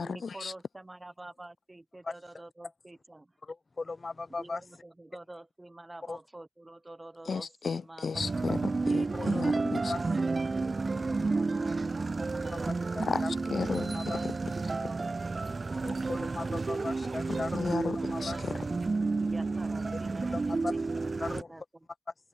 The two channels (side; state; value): both; normal; correlation 0.93